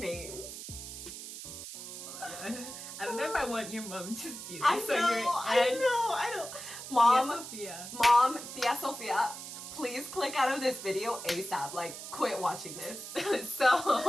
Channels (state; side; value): noise; right; hiss, 10 dB below the sound